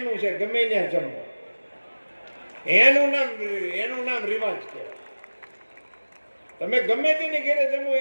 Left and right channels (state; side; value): inverted; both; correlation -1.00